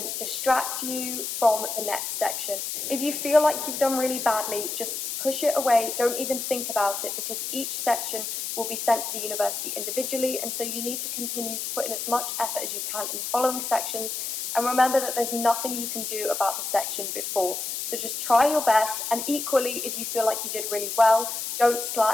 distract you from the next section. If you feel like you've done really badly, just push it away, don't even think about it, because each section will be sent to the university individually, and so you need to continue to put in as much effort as you can in the following sections. And remember that there's nothing you can do about the section before. So just try your best, and equally, if you feel like you did really well, don't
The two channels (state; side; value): noise; left; hiss, 4 dB below the sound